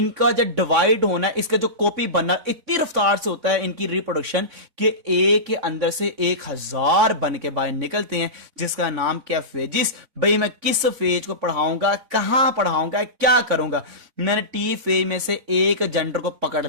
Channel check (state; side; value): late; left; 4.0 ms